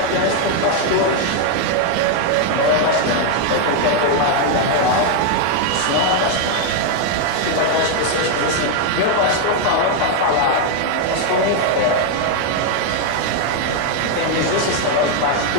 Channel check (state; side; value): different; both; correlation 0.00